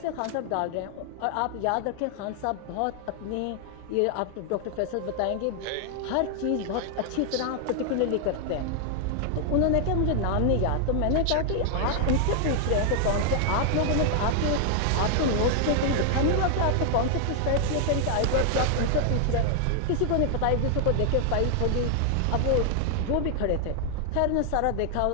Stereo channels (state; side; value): different; both; correlation 0.00